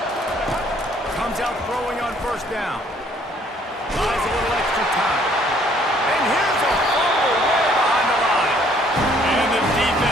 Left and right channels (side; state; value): both; normal; correlation 0.62